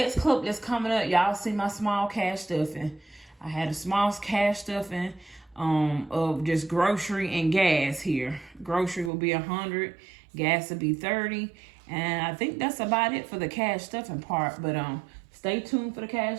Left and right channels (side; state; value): left; drops out; at 9.1 s